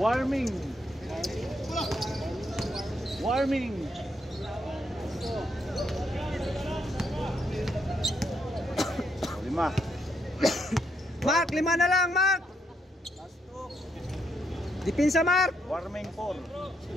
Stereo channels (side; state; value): both; normal; correlation 0.77